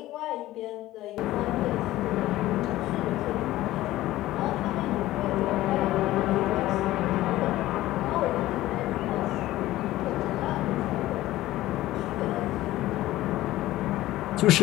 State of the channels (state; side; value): quieter; right; 15.9 dB